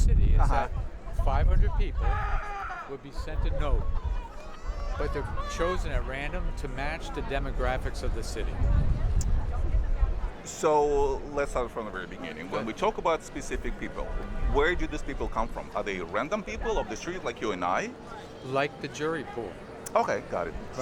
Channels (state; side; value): identical; both; correlation 1.00